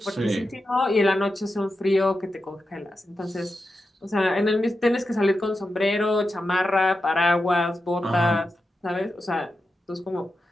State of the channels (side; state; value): both; normal; correlation 0.90